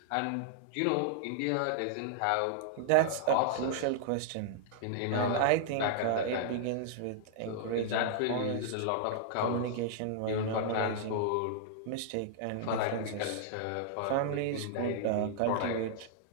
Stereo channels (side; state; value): both; different; correlation -0.01